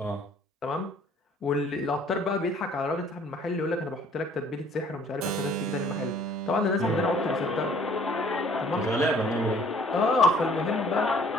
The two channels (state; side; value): normal; both; correlation 0.57